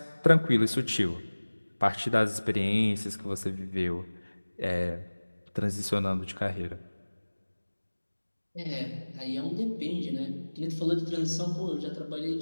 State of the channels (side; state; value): both; inverted; correlation -1.00